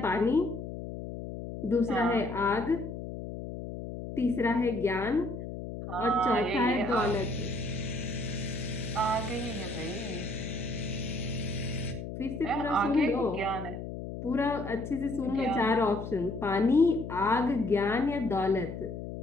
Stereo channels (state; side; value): noise; left; hum, 8 dB below the sound